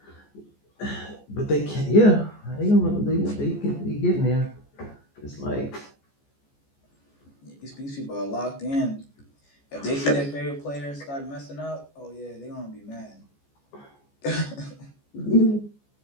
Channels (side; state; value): right; late; 14 ms